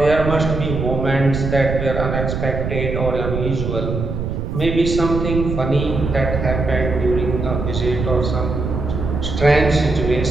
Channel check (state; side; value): noise; right; rumble, 3 dB below the sound